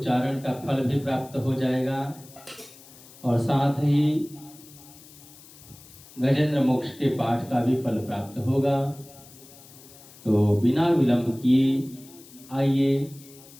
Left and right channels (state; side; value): noise; left; hiss, 21 dB below the sound